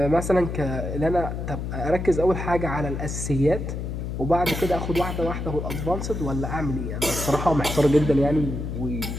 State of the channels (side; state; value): left; noise; hum, 4 dB below the sound